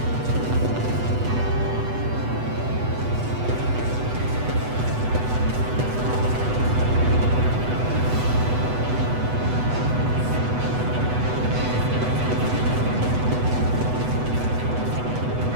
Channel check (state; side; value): late; left; 8.1 ms